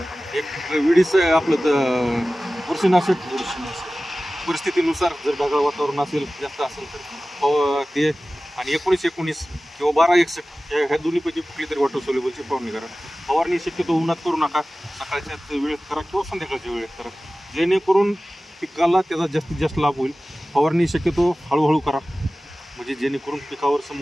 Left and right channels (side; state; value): both; normal; correlation 0.97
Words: एक विडीस आपलं बुरशीनाशक परिस्थितीनुसार, जर ढगाळ वातावरण असेल, जास्त असेल तर ते, आणि 19-19 किंवा 12-61 ह्या दोन्हीपैकी कुठली तरी वॉटर सोल्युबलची फवारणी करा. फवारणी शक्यतो उन्हात करू नका, सकाळच्या वेळेत करा किंवा संध्याकाळच्या वेळेत करा, जेणेकरून पिकाला त्याचा जास्तीत जास्त लाभ होईल. फवारणी शक्यतो हळूहळू करा, म्हणजे जेणेकरून पिकावर